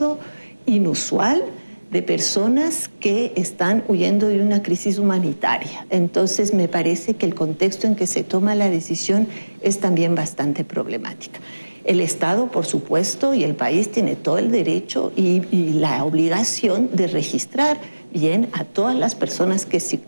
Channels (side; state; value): both; inverted; correlation -1.00